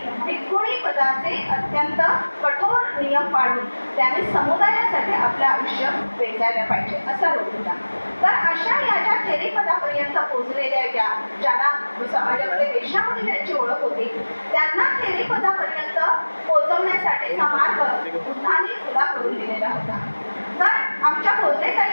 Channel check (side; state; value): both; inverted; correlation -1.00